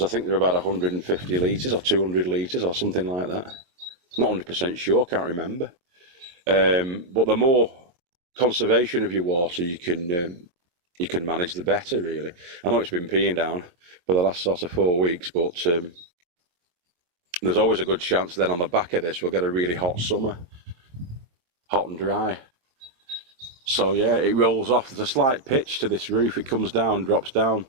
I think they're about 150 litres or 200 litres or something like that. Not 100% sure, can't remember. But the more conservation of your water you can manage, the better, really. I know it's been peeing down for the last sort of 4 weeks, but there's always a good chance then on the back of this we'll get a really hot summer, hot and dry. So yeah, it rolls off. There's a slight pitch to this roof. It comes down, drops down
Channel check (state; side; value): late; left; 22 ms